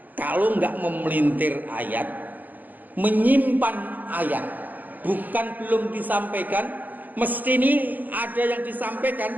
kalau nggak memelintir ayat, menyimpan ayat, bukan belum disampaikan, mesti ini ada yang disampaikan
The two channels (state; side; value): late; left; 0.084 ms